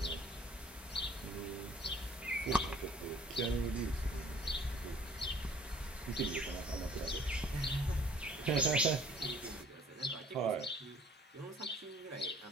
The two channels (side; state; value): both; normal; correlation 0.55